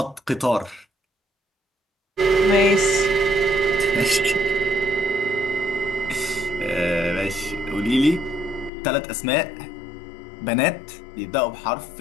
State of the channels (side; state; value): right; drops out; at 8.7 s